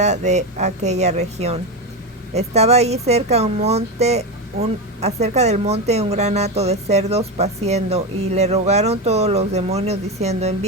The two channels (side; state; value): both; normal; correlation 0.15